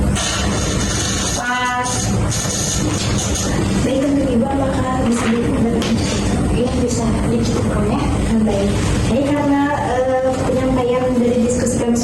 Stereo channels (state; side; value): identical; both; correlation 1.00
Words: Baik, untuk Ibu, apakah bisa dicukupkan ya? Baik. Jadi karena penyampaian dari diskusi kami